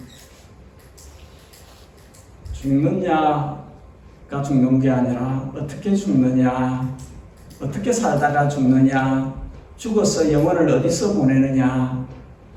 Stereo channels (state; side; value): identical; both; correlation 1.00